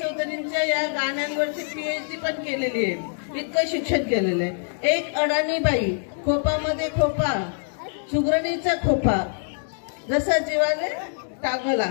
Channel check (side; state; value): right; silent; digital silence